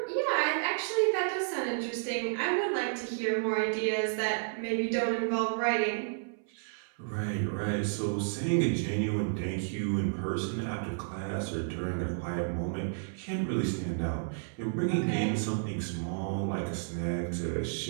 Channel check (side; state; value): left; silent; 57 dB below the other